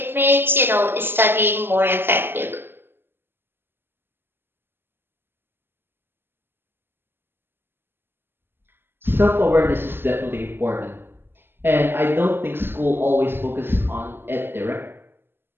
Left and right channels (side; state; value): left; late; 0.10 ms